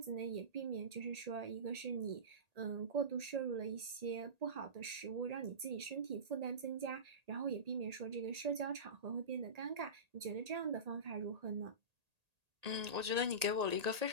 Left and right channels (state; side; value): late; left; 1.8 ms